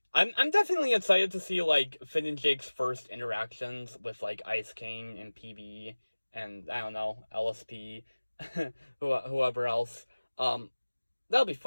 definitely excited to see like Finn and Jake's first interactions with like Ice King and PB and I don't know, LSP, whoever else. That'll be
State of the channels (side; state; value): both; inverted; correlation -1.00